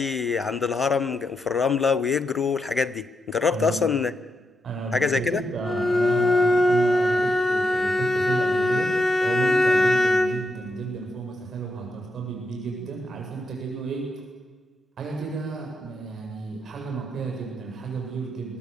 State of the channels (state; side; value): normal; both; correlation 0.83